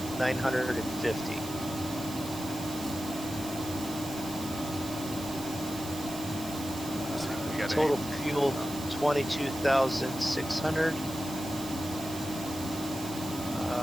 We got Total fuel 22,600.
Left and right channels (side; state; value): right; noise; hiss, 12 dB below the sound